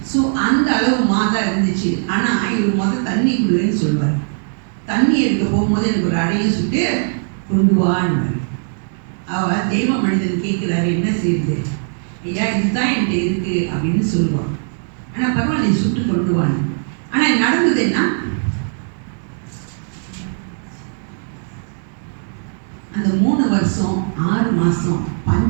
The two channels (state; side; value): silent; left; digital silence